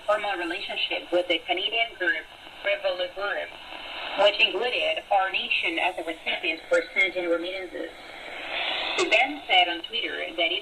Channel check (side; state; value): both; identical; correlation 1.00